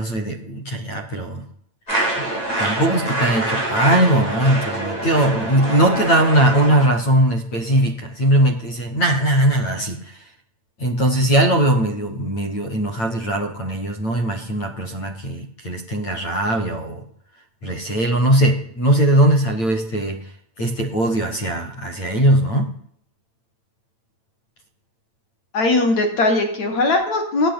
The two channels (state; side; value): late; right; 8.9 ms